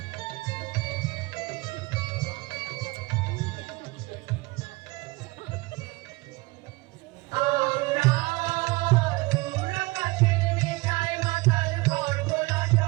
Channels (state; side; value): quieter; left; 23.5 dB